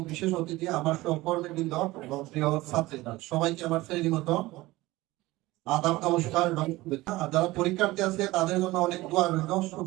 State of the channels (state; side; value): quieter; left; 19.1 dB